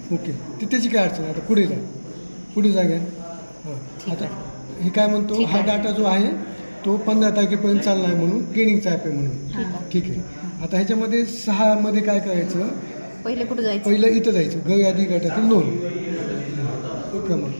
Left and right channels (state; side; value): inverted; both; correlation -1.00